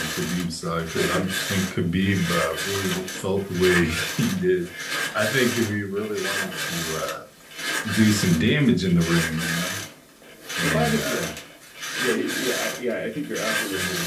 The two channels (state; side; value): identical; both; correlation 1.00